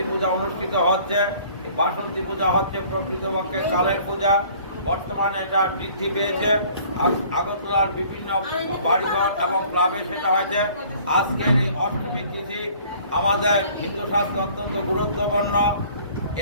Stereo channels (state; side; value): inverted; both; correlation -0.54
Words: পূজা অনুষ্ঠিত হচ্ছে। এই বাসন্তী পূজা হচ্ছে প্রকৃতপক্ষে কালের পূজা। বর্তমানে এটা বৃদ্ধি পেয়েছে। আগরতলার বিভিন্ন বাড়িঘর এবং ক্লাবে সেটা হয়েছে। আজকের এই অষ্টমী তিথি আমাদের হিন্দু শাস্ত্রে অত্যন্ত গুরুত্বপূর্ণ।